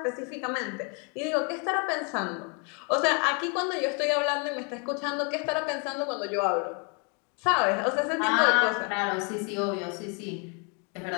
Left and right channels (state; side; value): quieter; right; 35.2 dB